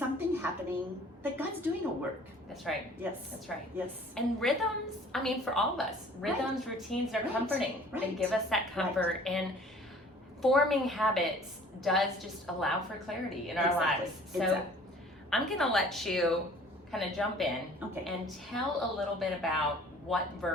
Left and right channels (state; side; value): normal; both; correlation 0.51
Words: happening, that God's doing a work. That's right. Yes. That's right. Yes. And rhythms, I mean, for all of us, rhythms, routines are comforting. They give us that comfort. And forming habits does just allow for clarity in our lives. So I'm going to let you kind of jump in and tell a little bit about what